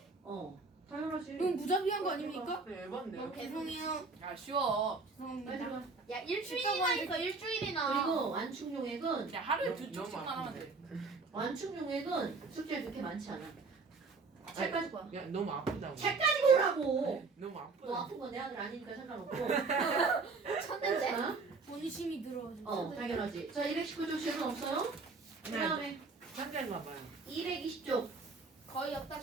당연하지. 이건 무자비한 거 아닙니까? 네, 에반데요. 죄송해요. 야 쉬워. 빨리 죄송합니다. 가. 야 일주일이나 있어 일주일이나. 그리고 완충용액은 야 하루에 너무- 두 너무 쪽씩만 하면 돼. 완충용액은 숙제 그렇게 많지 않아. 책까지 봐. 야 너무 아프다고. 책까지 보라고. 너무 너 아프다. 아픈 건 내 아들 아니니까 상관없고. 쳤는데? 자, 본심이 들어가지고. 당연하지. 자, 219쪽 질문 없어요? 그 네. 다음에 상대인가 봐요. 220쪽. 거의 없다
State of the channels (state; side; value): quieter; left; 4.1 dB